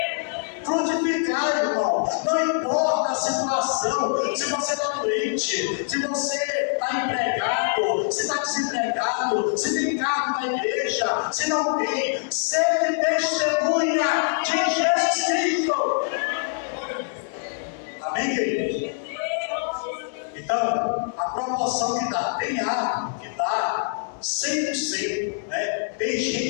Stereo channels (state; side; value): silent; right; digital silence